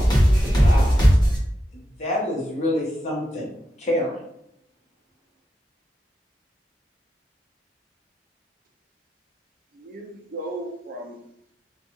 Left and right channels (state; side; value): normal; both; correlation 0.88